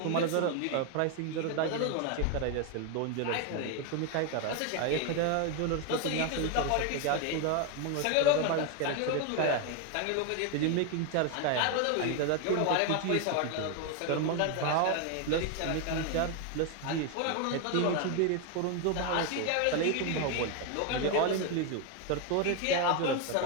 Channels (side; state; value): both; different; correlation 0.01